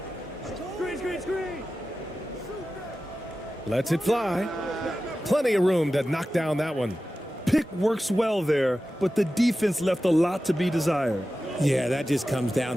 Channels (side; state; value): both; normal; correlation 0.94